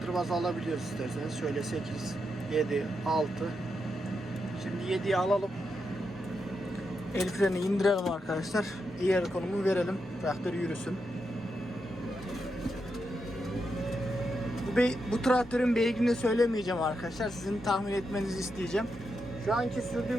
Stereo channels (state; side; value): normal; both; correlation 0.85